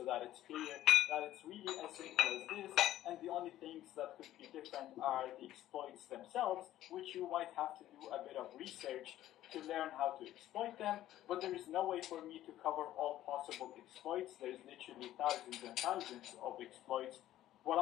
that it's clear that it's really as simple as this, and the only things that could be different are the exploits themselves, which you might have to do a bit of research to learn how to exploit them, but there is no way for me to cover all possible exploits. There's literally thousands and thousands of exploits. What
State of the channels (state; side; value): quieter; right; 13.5 dB